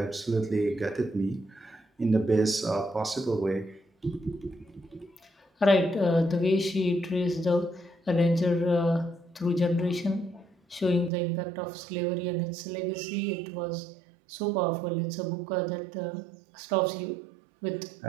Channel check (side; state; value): left; drops out; at 11.1 s